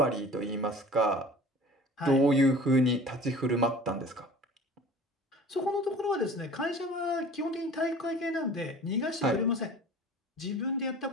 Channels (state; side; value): normal; both; correlation 0.43